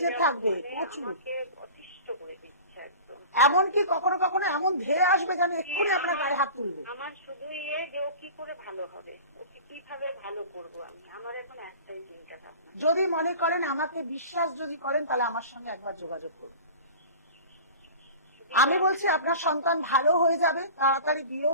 থাকবে, প্রচুর। আছে একদম। এমনকি কখনো কখনো এমন ধেয়ে আসবে যেন এক্ষুনি আপনার গায়ে হাত তুলবে। আমার শুধু যে ও কি করে ভালো হবে, ওকে কিভাবে ভালো করবো আমি, আমার এখন একটাই চিন্তা ভাবনা। যদি মনে করেন, আমাকে বিশ্বাস যদি করেন, তাহলে আমার সঙ্গে একবার যোগাযোগ করুন। আমি বলছি আপনার সন্তান ভালো হয়ে যাবে, তাড়াতাড়ি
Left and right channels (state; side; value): inverted; both; correlation -0.38